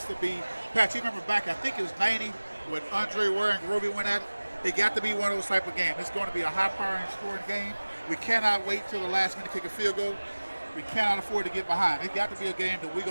to be. Pat, you remember back, I think it was 90 when Andre Ware and Roby went at it. It got to be one of those type of games. It's going to be a high-powering scoring game. We cannot wait till the last minute to kick a field goal. We cannot afford to get behind. It's got to be a game that we're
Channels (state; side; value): inverted; both; correlation -1.00